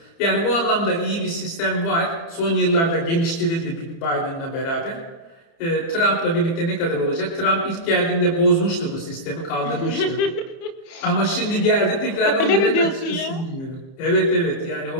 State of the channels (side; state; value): right; late; 30 ms